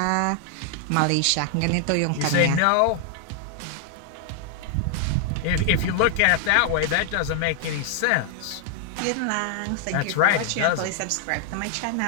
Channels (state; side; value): different; both; correlation 0.00